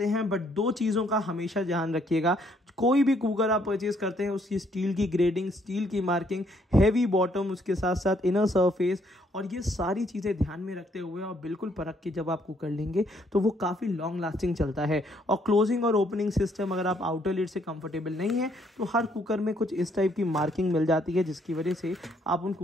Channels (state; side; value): normal; both; correlation 0.69